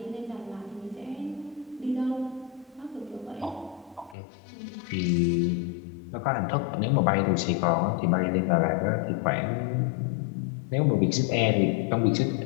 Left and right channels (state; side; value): drops out; right; at 4.2 s